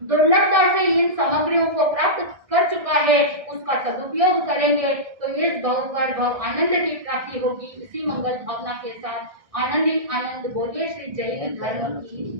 दुर्लभता से इन सामग्रियों को प्राप्त कर चुका है उसका सदुपयोग करेंगे तो इस भव पर भव आनंद की प्राप्ति होगी। इसी मंगल भावना के साथ आनंद ही आनंद बोलिए श्री जैन धर्म की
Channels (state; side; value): late; left; 1.6 ms